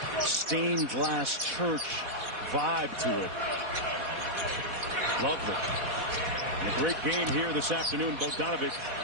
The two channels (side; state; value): left; late; 4.1 ms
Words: stained glass church vibe to it. Lovely. And a great game here this afternoon. Bogdanovich